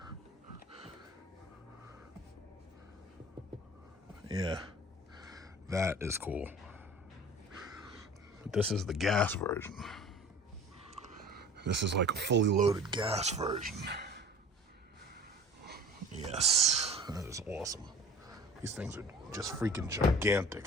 Yeah, that is cool. But this is the gas version. This is like a fully loaded gas version. Yes, that is awesome. These things are just freaking gigantic.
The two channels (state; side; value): normal; both; correlation 0.43